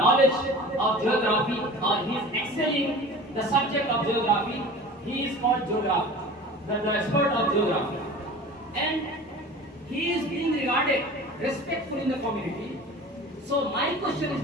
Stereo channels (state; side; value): normal; both; correlation 0.39